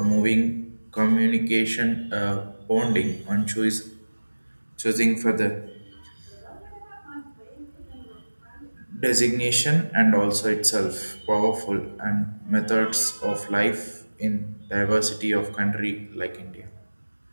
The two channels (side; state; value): both; inverted; correlation -1.00